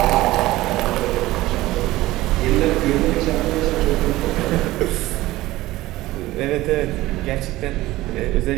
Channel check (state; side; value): quieter; left; 17.6 dB